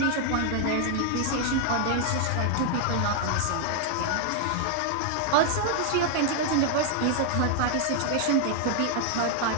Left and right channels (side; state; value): both; different; correlation 0.00